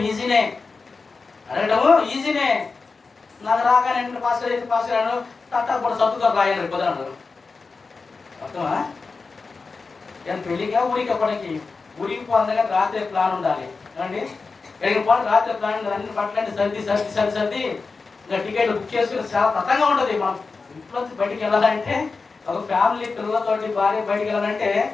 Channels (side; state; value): right; quieter; 4.3 dB